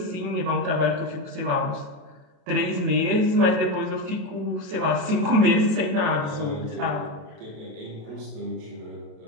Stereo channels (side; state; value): left; late; 27 ms